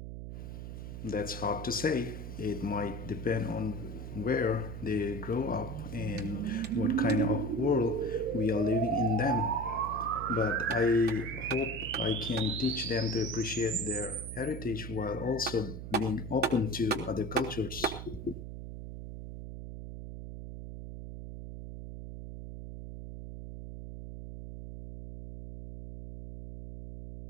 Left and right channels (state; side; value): noise; right; hum, 9 dB below the sound